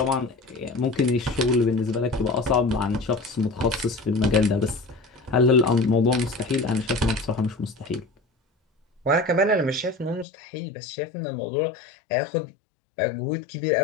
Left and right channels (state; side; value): drops out; right; at 10.2 s